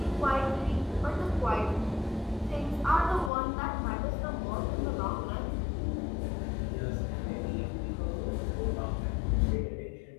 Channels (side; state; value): right; drops out; at 3.3 s